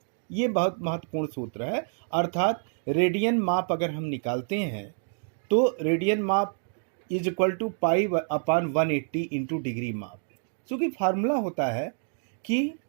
ये बहुत महत्वपूर्ण सूत्र है। अर्थात रेडियन माप अगर हम निकालते हैं तो रेडियन माप = π/180 इंटू डिग्री माप। चूँकि फार्मूला होता है कि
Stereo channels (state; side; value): silent; left; 60 dB below the other